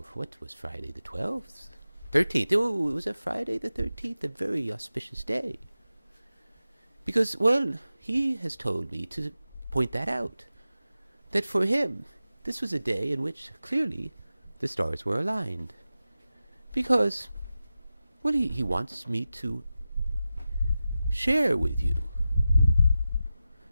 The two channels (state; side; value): inverted; both; correlation -0.93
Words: What was Friday the 12th? 13th. Oh, it was a Friday the 13th, a very auspicious day. Because, well, he has told me to point that out. That for him, this was a day in which clearly the stars were aligned. Because, well, he wants me to share with you